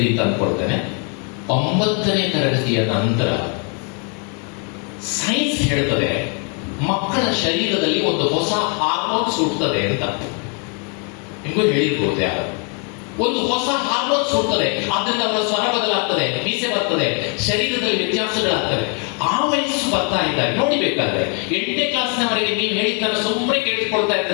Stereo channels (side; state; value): right; quieter; 38.0 dB